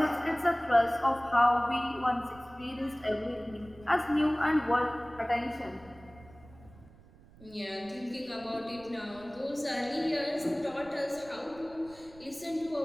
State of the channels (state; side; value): noise; right; rumble, 23 dB below the sound